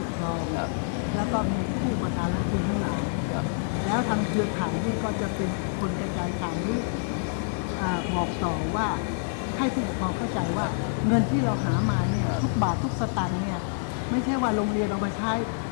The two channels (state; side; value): silent; right; 60 dB below the other